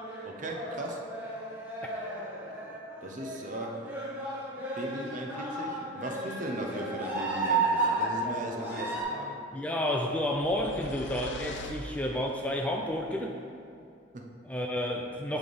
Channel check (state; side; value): normal; both; correlation 0.31